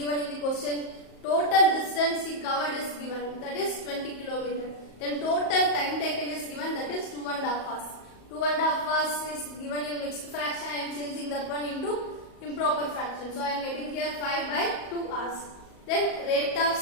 in the question? Total distance he covered is given, that is 20 km. Then total time taken is given, that is 2.5 hours. 2.5 hours is given in mixed fraction. I am changing that one into improper fraction. So I am getting here 5 by 2 hours. Then rate of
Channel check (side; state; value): right; late; 38 ms